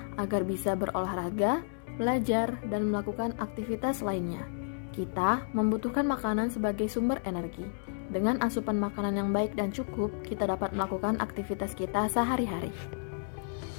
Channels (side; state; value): right; silent; digital silence